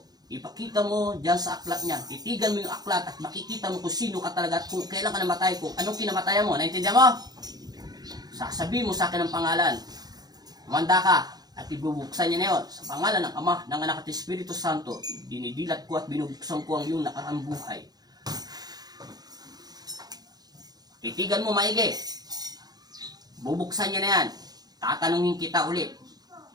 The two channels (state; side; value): late; left; 0.19 ms